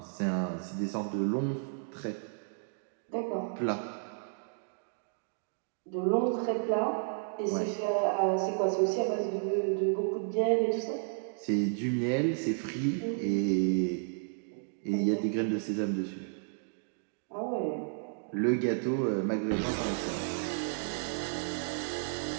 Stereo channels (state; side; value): silent; left; digital silence